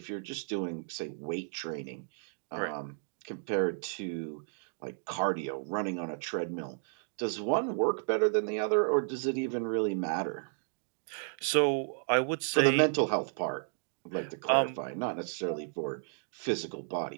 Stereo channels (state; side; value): silent; left; digital silence